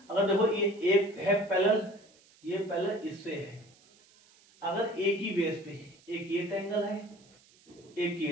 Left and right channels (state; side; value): noise; right; hiss, 28 dB below the sound